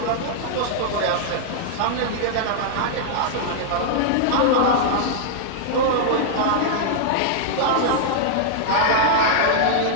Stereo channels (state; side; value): different; both; correlation -0.01